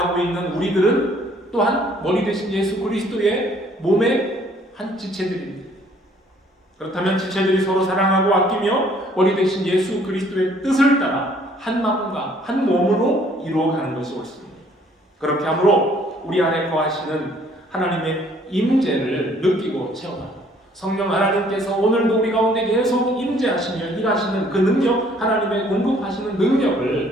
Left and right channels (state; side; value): normal; both; correlation 0.60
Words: 있는 우리들은 또한 머리 대신 예수 그리스도의 몸의 한 지체들입니다. 그렇다면 지체들이 서로 사랑하고 아끼며 머리 대신 예수 그리스도의 뜻을 따라 한 마음과 한 몸으로 이루어가는 것이 옳습니다. 그렇게 함으로 우리 안에 거하시는 하나님의 임재를 느끼고 체험하고 성령 하나님께서 오늘도 우리 가운데 계속 임재하시며 일하시는 그 능력, 하나님의 공급하시는